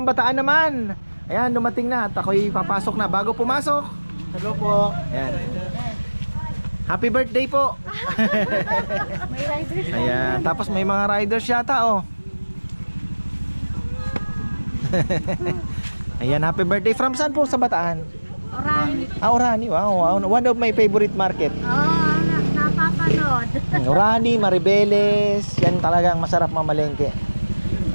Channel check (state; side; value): inverted; both; correlation -1.00